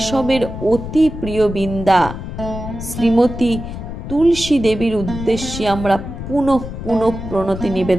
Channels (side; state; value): left; noise; rumble, 8 dB below the sound